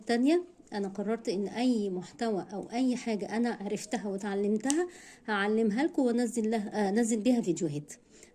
تانية. انا قررت ان اي محتوى او اي حاجة انا عرفتها وتعلمتها هعلمها لكم وانزل بيها فيديوهات.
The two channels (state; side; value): identical; both; correlation 1.00